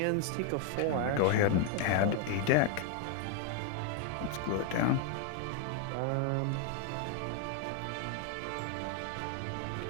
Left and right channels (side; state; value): both; different; correlation 0.00